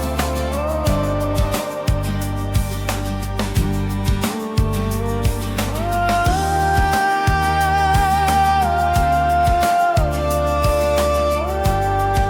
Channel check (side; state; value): both; identical; correlation 1.00